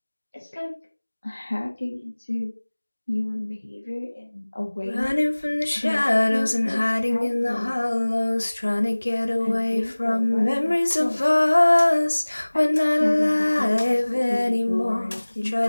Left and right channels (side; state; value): both; inverted; correlation -1.00